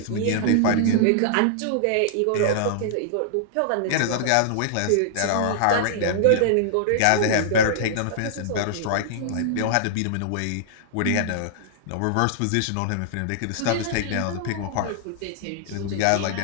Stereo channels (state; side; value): different; both; correlation -0.01